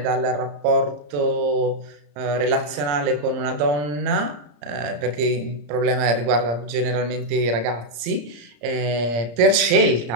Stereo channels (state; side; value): late; left; 34 ms